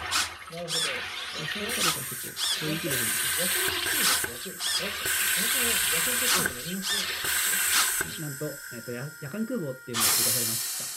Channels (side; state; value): both; identical; correlation 1.00